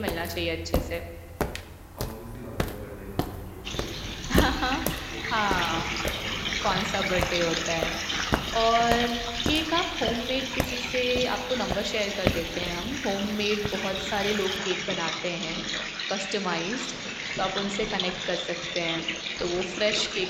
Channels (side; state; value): both; identical; correlation 1.00